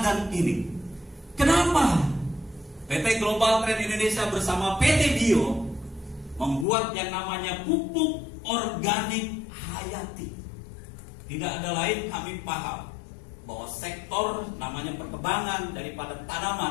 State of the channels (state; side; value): drops out; right; at 6.7 s